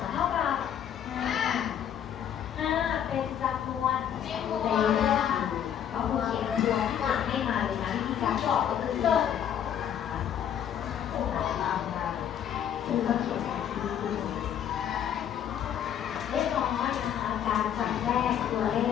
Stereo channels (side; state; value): right; quieter; 9.5 dB